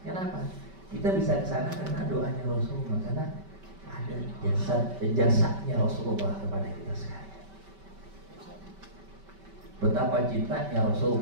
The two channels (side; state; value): left; late; 5.2 ms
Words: Kenapa? Kita bisa ke sana karena doanya Rasulullah, karena ada jasanya Rasulullah kepada kita sekalian. Betapa cintanya